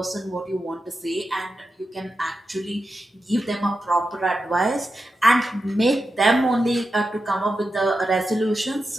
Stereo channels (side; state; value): both; normal; correlation 0.89